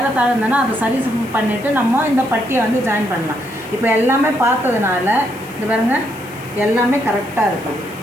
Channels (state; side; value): noise; left; hiss, 21 dB below the sound